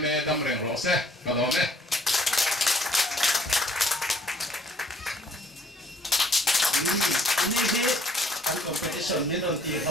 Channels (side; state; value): both; normal; correlation 0.60